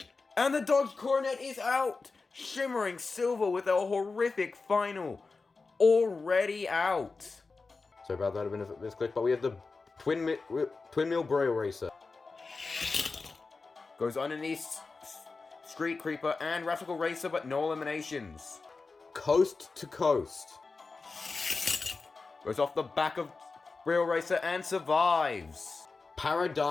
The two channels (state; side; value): quieter; right; 4.1 dB